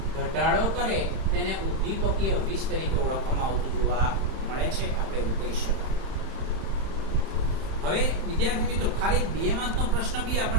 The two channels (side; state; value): left; late; 31 ms